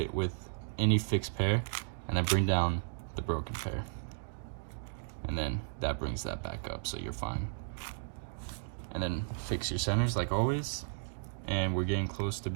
with any fixed pair, and then bring down the broken pair. And then that brings that back up, so you're fine. And then fix your centers like always. And we're getting close to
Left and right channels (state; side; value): silent; left; digital silence